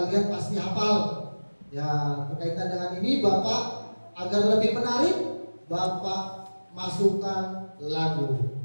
pasti hafal. Ya, berkaitan dengan ini Bapak agar lebih menarik, Bapak masukkan lagu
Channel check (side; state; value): both; inverted; correlation -1.00